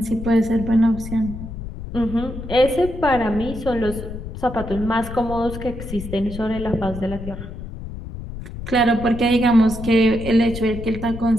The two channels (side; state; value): left; noise; rumble, 10 dB below the sound